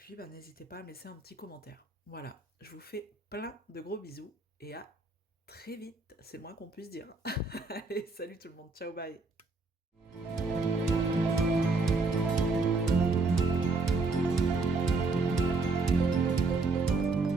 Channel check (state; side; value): quieter; left; 3.8 dB